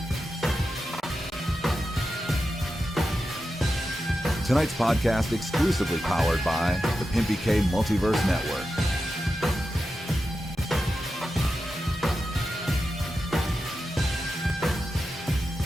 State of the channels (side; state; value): both; normal; correlation 0.90